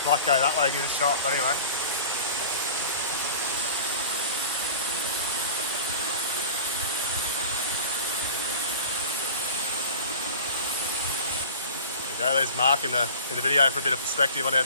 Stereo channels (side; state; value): both; inverted; correlation -0.40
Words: Might go that way, give it a shot, but anyway. There you go, there's Mark in the video for a bit of perspective on how